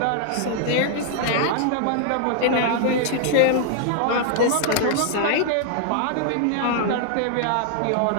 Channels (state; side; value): different; both; correlation 0.00